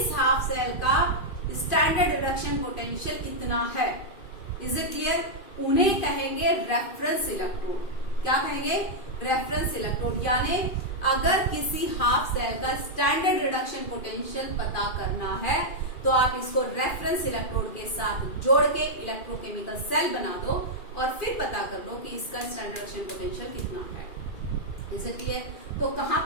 हाफ सेल का स्टैंडर्ड रिडक्शन पोटेंशियल इतना है। Is it clear? उन्हें कहेंगे रेफरेंस इलेक्ट्रोड। क्या कहेंगे? Reference electrode. यानी अगर किसी हाफ सेल का स्टैंडर्ड रिडक्शन पोटेंशियल पता करना है तो आप इसको रेफरेंस इलेक्ट्रोड के साथ जोड़ के इलेक्ट्रोकेमिकल सेल बना दो और फिर पता कर लो कि इसका स्टैंडर्ड रिडक्शन पोटेंशियल कितना है। Is it clear? तो कहां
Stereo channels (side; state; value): right; late; 2.5 ms